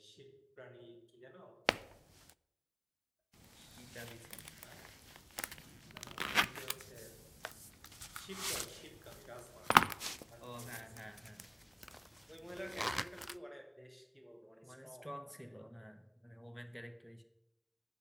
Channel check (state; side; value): identical; both; correlation 1.00